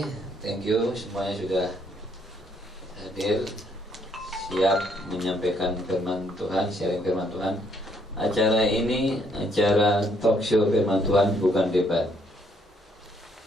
thank you semuanya sudah hadir, siap menyampaikan firman Tuhan, sharing firman Tuhan. Acara ini acara talk show firman Tuhan, bukan debat.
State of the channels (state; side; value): normal; both; correlation 0.70